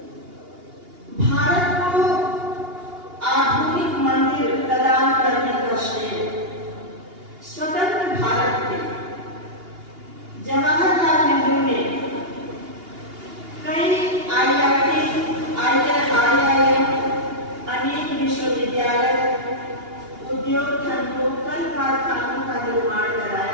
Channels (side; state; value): left; late; 2.8 ms